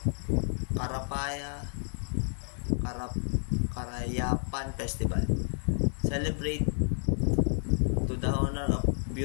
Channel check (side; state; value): right; silent; 58 dB below the other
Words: Karayapan Festival. Celebrate to the honor of